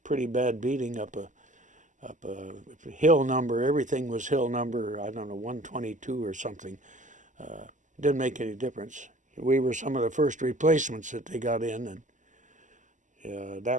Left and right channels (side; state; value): left; late; 0.37 ms